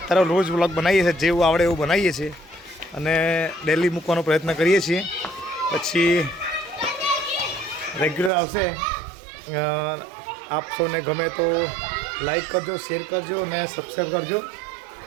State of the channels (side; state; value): left; drops out; at 8.3 s